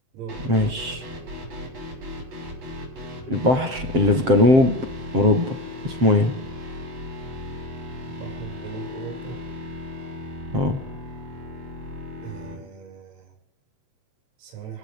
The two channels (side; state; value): left; late; 7.6 ms